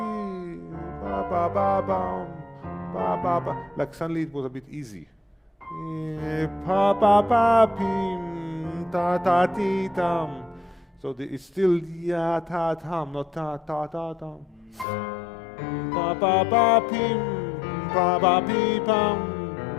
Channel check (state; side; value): drops out; right; at 14.9 s